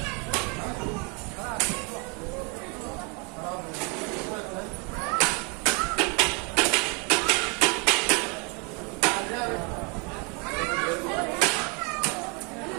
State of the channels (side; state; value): left; quieter; 32.8 dB